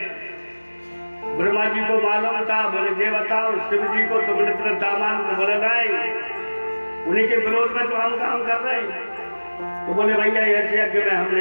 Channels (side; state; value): both; inverted; correlation -1.00